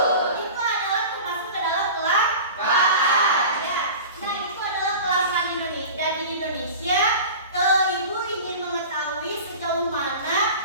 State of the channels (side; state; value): both; inverted; correlation -0.36